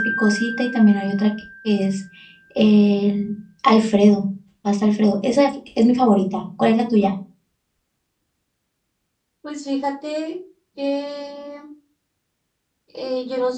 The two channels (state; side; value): identical; both; correlation 1.00